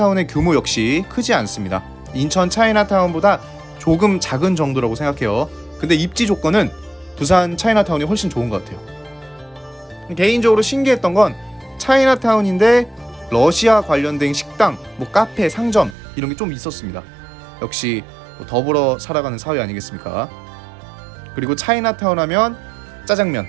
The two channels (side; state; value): left; drops out; at 16.0 s